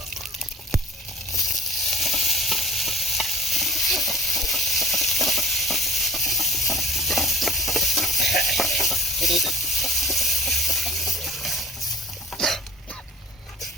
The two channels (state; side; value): normal; both; correlation 0.46